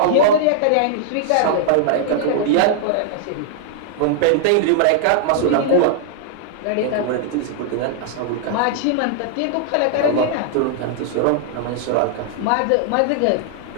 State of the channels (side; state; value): both; different; correlation -0.01